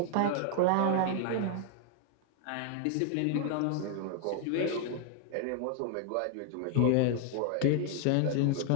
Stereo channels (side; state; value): both; different; correlation 0.00